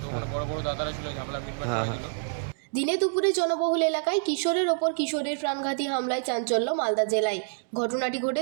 ওখানে বড় বড় দাদারা ছিল, ঝামেলা মিটমাট করে দিল। দিনে দুপুরে জনবহুল এলাকায় কিশোরের ওপর কিশোরের প্রাণঘাতী হামলায় চাঞ্চল্য মালদা জেলায়। ঘটনাটি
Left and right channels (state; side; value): silent; left; digital silence